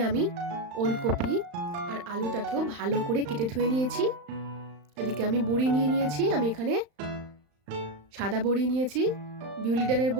আমি ওলকপি আর আলুটাকেও ভালো করে কেটে ধুয়ে নিয়েছি। এদিকে আমি বড়ি নিয়ে নিয়েছি। আমি এখানে সাদা বড়ি নিয়েছি, বিউলি ডালের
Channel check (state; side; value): late; left; 35 ms